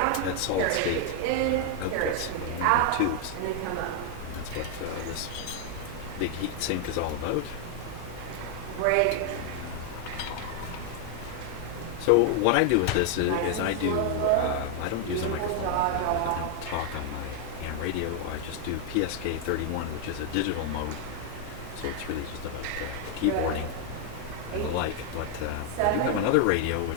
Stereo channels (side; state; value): both; different; correlation 0.00